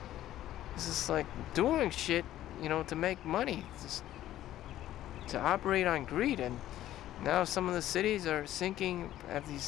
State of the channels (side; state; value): right; quieter; 13.3 dB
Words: just like doing shit, to make money. It's just to operate on greed. And now some of the cities are have these